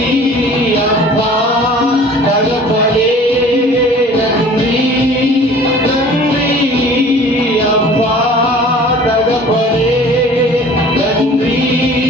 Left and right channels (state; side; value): normal; both; correlation 0.47